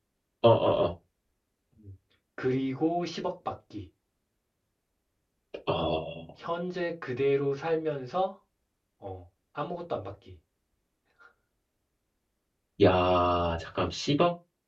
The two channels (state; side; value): identical; both; correlation 1.00